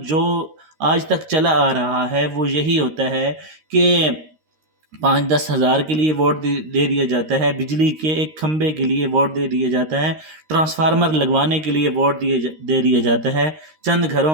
جو آج تک چلا آ رہا ہے وہ یہی ہوتا ہے کہ 5-10 ہزار کے لیے ووٹ دے دیا جاتا ہے، بجلی کے ایک کھمبے کے لیے ووٹ دے دیا جاتا ہے، ٹرانسفارمر لگوانے کے لیے ووٹ دے دیا جاتا ہے، چند گھروں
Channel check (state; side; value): late; left; 13 ms